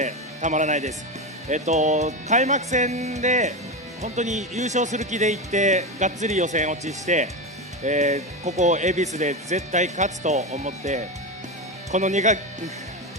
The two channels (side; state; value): both; normal; correlation 0.17